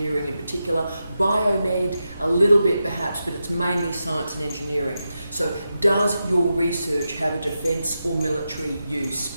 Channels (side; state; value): both; inverted; correlation -0.89